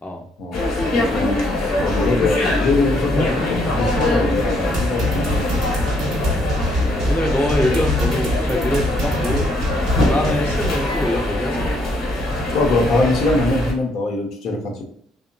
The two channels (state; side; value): normal; both; correlation 0.71